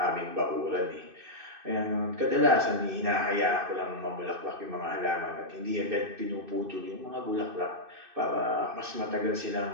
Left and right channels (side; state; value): left; late; 2.6 ms